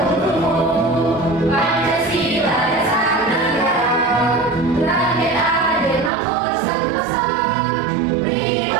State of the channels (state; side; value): drops out; left; at 6.1 s